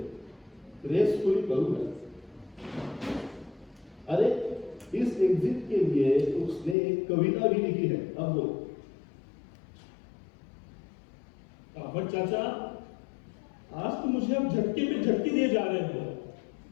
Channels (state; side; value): drops out; right; at 6.8 s